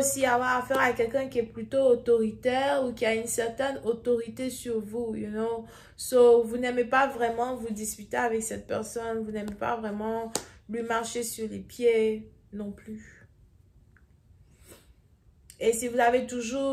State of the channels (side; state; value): both; identical; correlation 1.00